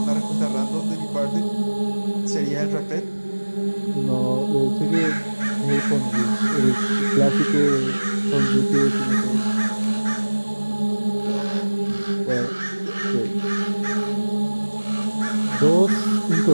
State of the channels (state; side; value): inverted; both; correlation -1.00